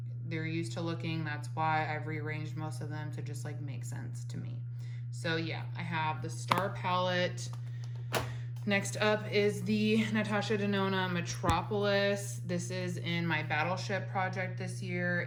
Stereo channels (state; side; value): identical; both; correlation 1.00